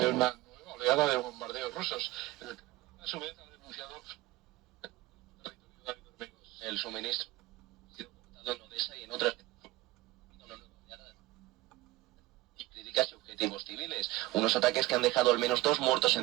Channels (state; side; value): quieter; left; 18.4 dB